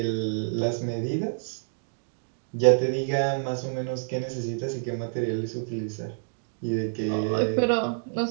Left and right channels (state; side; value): silent; left; digital silence